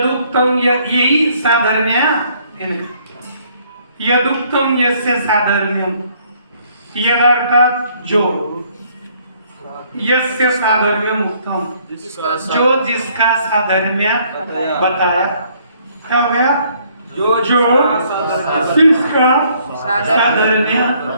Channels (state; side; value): inverted; both; correlation -0.64